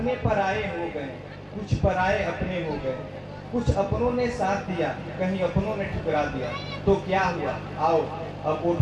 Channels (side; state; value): both; identical; correlation 1.00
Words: पराये हो गए, कुछ पराये अपने हो गए, कुछ अपनों ने साथ दिया, कहीं अपनों ने ठुकरा दिया, तो क्या हुआ, आओ अब